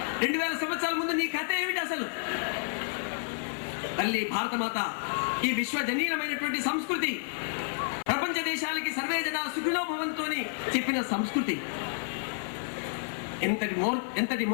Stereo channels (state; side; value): silent; right; 58 dB below the other